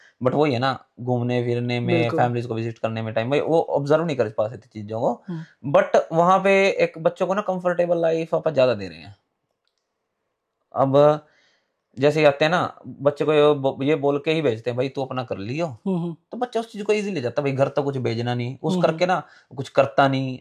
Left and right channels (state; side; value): identical; both; correlation 1.00